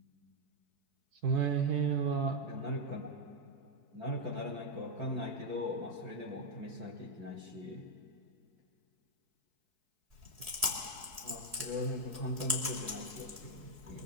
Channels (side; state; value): left; late; 4.6 ms